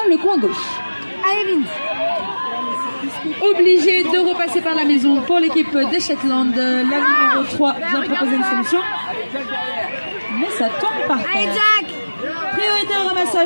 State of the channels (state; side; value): inverted; both; correlation -1.00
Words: le coin gauche. Obligé de repasser par la maison pour l'équipe des Shetland. La numéro 3 vient proposer une solution, mais ça tombe par terre. Priorité au